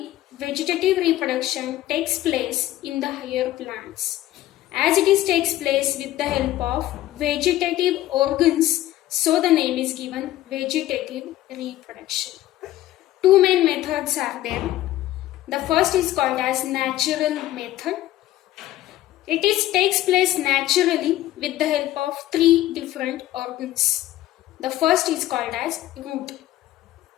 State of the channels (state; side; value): quieter; right; 14.7 dB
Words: vegetative reproduction takes place in the higher plants. As it takes place with the help of vegetative organs, so the name is given vegetative reproduction. 2 main methods are there. The first is called as natural method. It takes place naturally with the help of 3 different organs. The first is called as root.